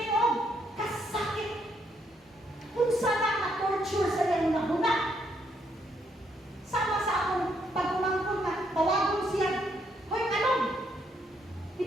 o, kasakit. Kung sana na-torture sa iyong nahuna. Sama sa akong pagkumangkon na tawagon siya, hoy, anong? Di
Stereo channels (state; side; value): normal; both; correlation 0.74